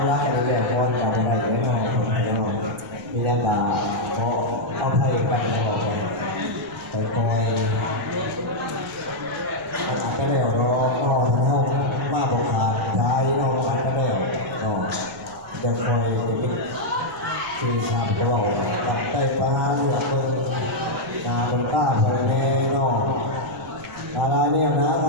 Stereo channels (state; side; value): noise; right; rumble, 24 dB below the sound